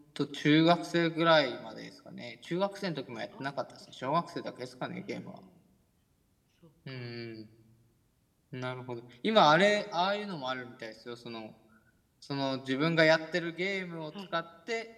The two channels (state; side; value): identical; both; correlation 1.00